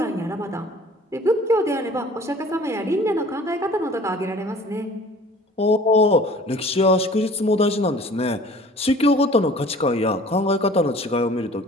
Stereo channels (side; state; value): both; normal; correlation 0.49